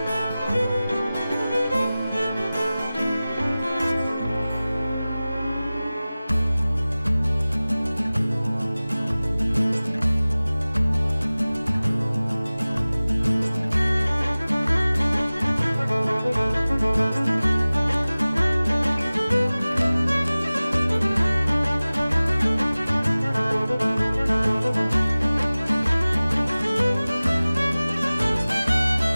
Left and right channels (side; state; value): both; inverted; correlation -0.98